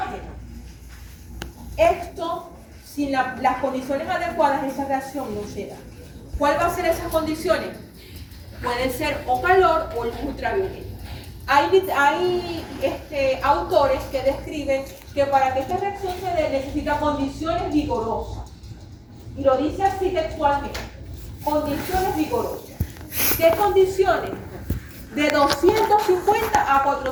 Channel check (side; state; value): both; identical; correlation 1.00